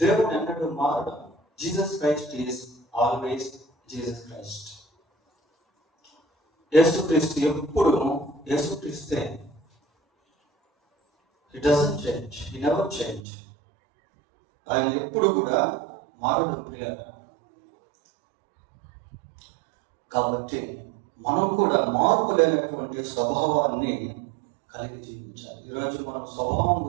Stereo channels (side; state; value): left; drops out; at 13.2 s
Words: దేవుడు ఎన్నడూ మారడు. Jesus Christ is always Jesus Christ. యేసుక్రీస్తు ఎప్పుడు యేసుక్రీస్తే. He doesn't change. He never change. ఆయన ఎప్పుడు కూడా మారడు ప్రియులారా. కాబట్టి మనం కూడా మార్పు లేనటువంటి స్వభావాన్ని కలిగి జీవించాలి. ఈరోజు మనం స్వభావం